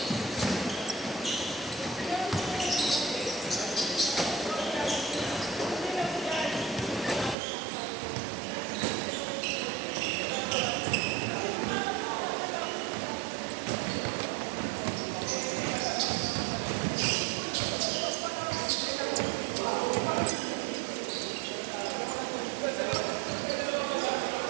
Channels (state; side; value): drops out; left; at 7.4 s